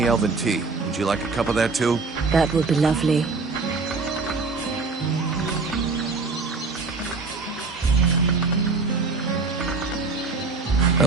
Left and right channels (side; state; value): left; quieter; 4.1 dB